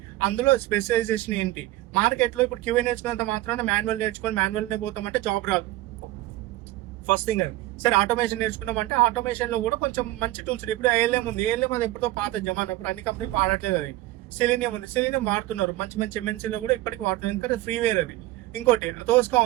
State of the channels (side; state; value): left; quieter; 17.1 dB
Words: అందులో స్పెషలైజేషన్ ఏంటి. మార్కెట్ లో ఇప్పుడు QA నేర్చుకున్నంత మాత్రాన మాన్యువల్ నేర్చుకొని మాన్యువల్నే పోతామంటే జాబ్ రాదు. ఫస్ట్ థింగ్ అది. సరే ఆటోమేషన్ నేర్చుకున్నామంటే ఆటోమేషన్ లో కూడా కొంచెం మంచి టూల్స్. ఇప్పుడు ALM ఉంది, ALM అది ఎప్పుడో పాత జమానా, ఇప్పుడు అన్ని కంపెనీలు వాడట్లేదు. అది సెలీనియం ఉంది, సెలీనియం వాడుతున్నారు, మంచి మంచి MNC లో కూడా ఇప్పటికి వాడుతున్నారు, ఎందుకంటే ఫ్రీవేర్ అది. ఇంకోటి తోస్కా